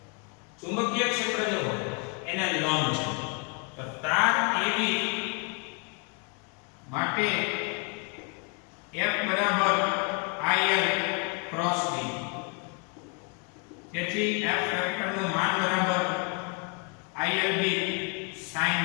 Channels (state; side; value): quieter; right; 34.3 dB